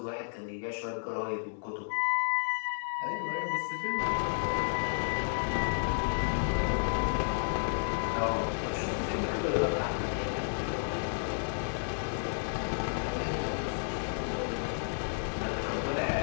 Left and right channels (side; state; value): right; silent; digital silence